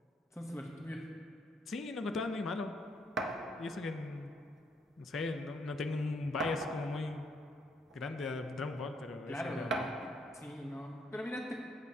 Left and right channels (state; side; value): normal; both; correlation 0.72